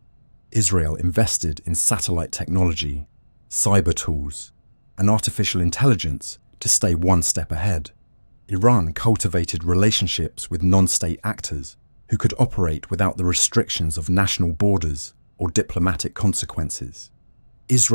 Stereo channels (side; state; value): both; inverted; correlation -1.00